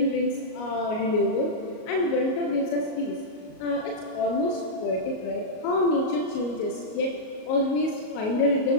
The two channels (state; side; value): late; right; 38 ms